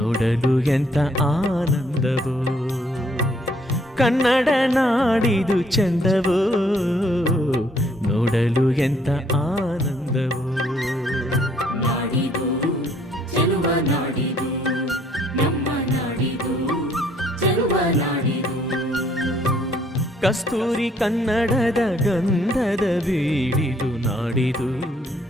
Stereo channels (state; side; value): normal; both; correlation 0.65